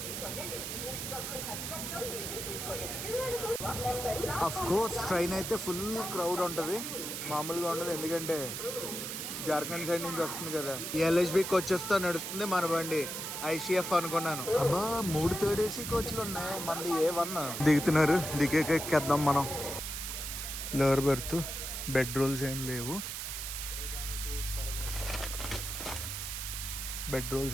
అఫ్ కోర్స్ ట్రైన్ అయితే ఫుల్ క్రౌడ్ ఉంటుంది, మామూలుగా ఉండదు. ఎందుకంటే జార్ఖండ్ సైడ్ నుంచి వస్తుంది కదా. ఎల్హెచ్బి కోచెస్ తో నడుస్తుంది మన బండి. ఐసీఎఫ్ అనుకున్నాను. అబ్బా 3 థర్డ్ ఏసీ కోచ్లు ఉన్నాయి, మనది A1. దిగుతున్నారు, దిగేకెక్కేద్దాం మనం. లోవర్ బెర్త్, బెడ్ రోల్స్ ఏం లేవు. బెడ్ రోల్స్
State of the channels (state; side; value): noise; right; hiss, 5 dB below the sound